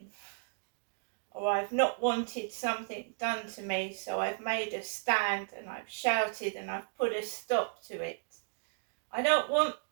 Or I've not wanted something done to me, so I've made a stand and I've shouted and I've put a stop to it. I don't want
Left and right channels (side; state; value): left; silent; digital silence